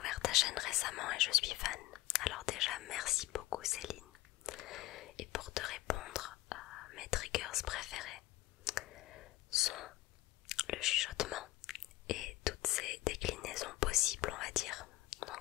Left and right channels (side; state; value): right; quieter; 17.7 dB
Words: ta chaîne récemment et je suis fan. Alors déjà, merci beaucoup Céline. Et pour te répondre, mes triggers préférés sont le chuchotement et toutes ses déclinaisons possibles, on va dire.